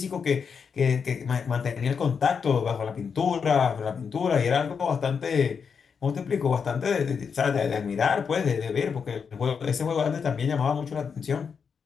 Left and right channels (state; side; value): quieter; right; 6.2 dB